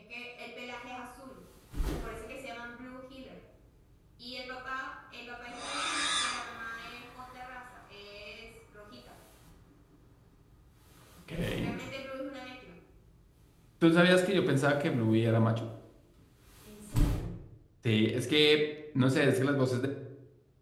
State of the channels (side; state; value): both; identical; correlation 1.00